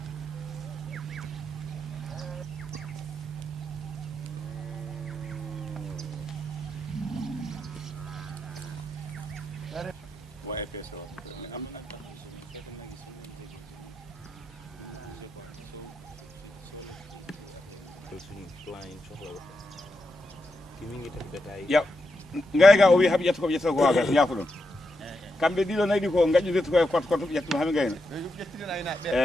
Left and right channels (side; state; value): both; normal; correlation 0.85